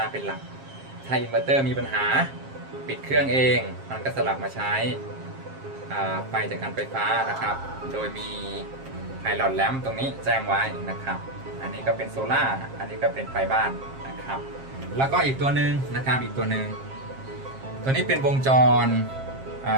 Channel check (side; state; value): left; late; 7.5 ms